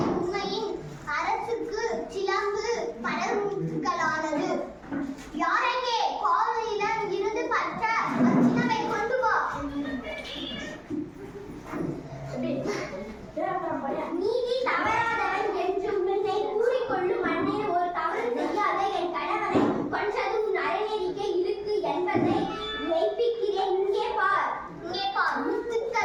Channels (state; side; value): identical; both; correlation 1.00